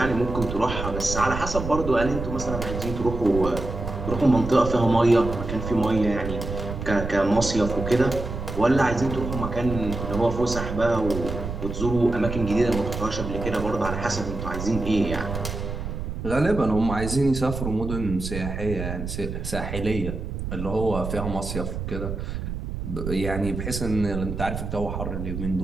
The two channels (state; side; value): noise; right; rumble, 6 dB below the sound